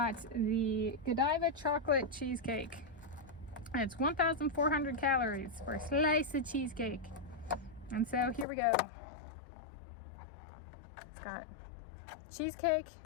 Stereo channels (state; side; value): drops out; right; at 8.5 s